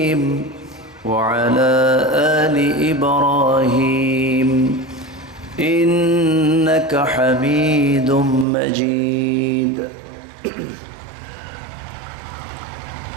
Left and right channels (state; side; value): drops out; left; at 8.5 s